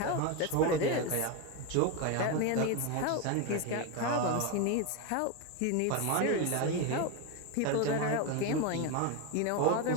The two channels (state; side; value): different; both; correlation 0.03